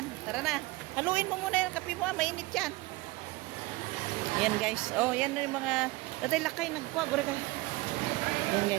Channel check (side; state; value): left; quieter; 21.7 dB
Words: tara na. Haluin mo muna yung kape mo, mainit yan. Ayan, guys. Yan na yung mga... Datay lakay, nagkuha. Gura ka. Ayan,